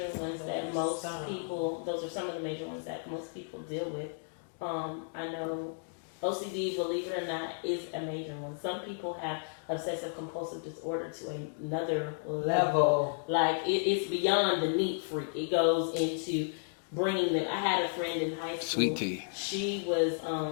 ones that most people. Those are some of the major ones that most people deal with. I know OCD, believe it or not, is a major one. Some people have obsessive compulsive disorder to another level. Like it's beyond the neat freak. It goes into bringing them. I had a friend in high school. Sweet tea. She was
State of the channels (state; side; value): silent; right; digital silence